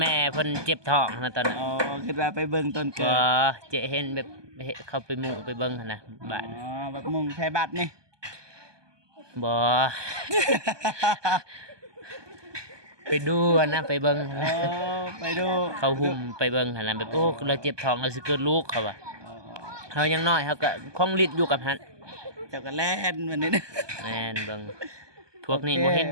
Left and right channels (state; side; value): late; left; 1.2 ms